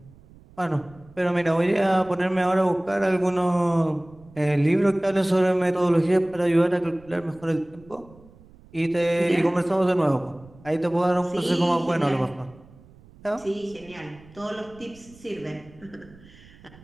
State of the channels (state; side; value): noise; right; rumble, 24 dB below the sound